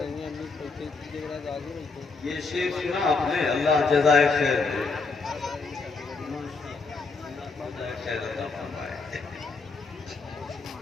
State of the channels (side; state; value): right; quieter; 4.3 dB